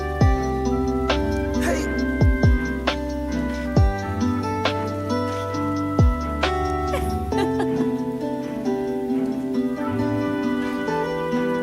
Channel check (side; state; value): both; identical; correlation 1.00